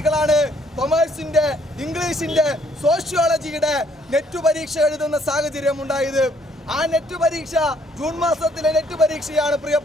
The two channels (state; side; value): normal; both; correlation 0.66